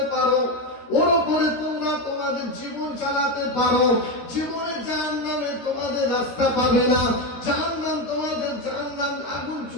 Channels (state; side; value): late; right; 12 ms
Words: পারো, ওর উপরে তোমরা তোমাদের জীবন চালাতে পারো, জীবনে জাহান্নামে তোমাদের রাস্তা পাবে না, জাহান্নাম তোমাদের জাহান্নাম আগুন